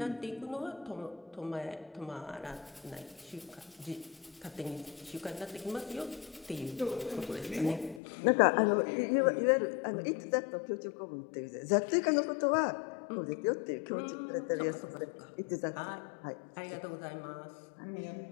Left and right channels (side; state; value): right; drops out; at 8.0 s